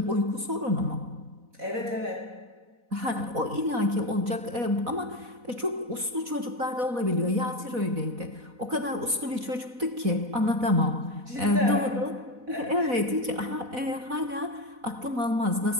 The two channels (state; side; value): late; left; 4.1 ms